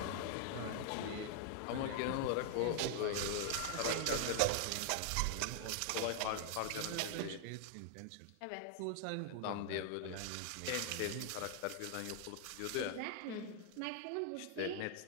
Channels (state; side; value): different; both; correlation 0.00